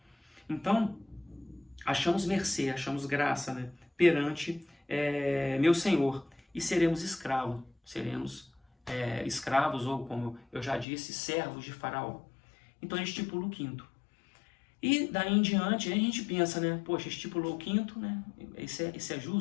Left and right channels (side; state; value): right; drops out; at 10.9 s